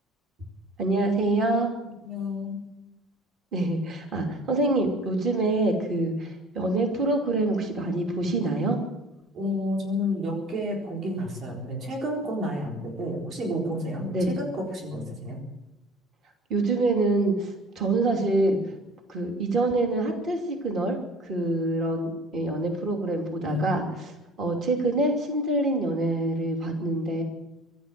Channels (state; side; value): normal; both; correlation 0.45